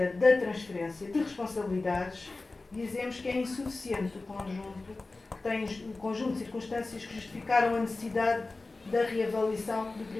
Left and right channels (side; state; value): right; quieter; 3.4 dB